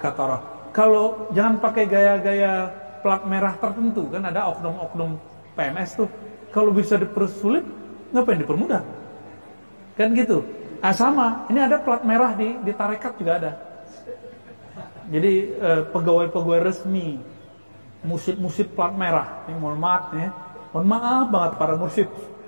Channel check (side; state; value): both; inverted; correlation -1.00